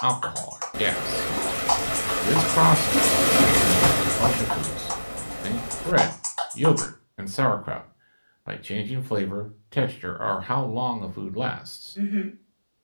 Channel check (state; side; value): inverted; both; correlation -1.00